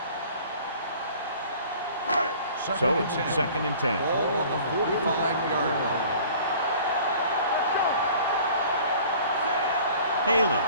So it's second and 10. Ball on the 45-yard line. Haley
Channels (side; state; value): both; inverted; correlation -0.48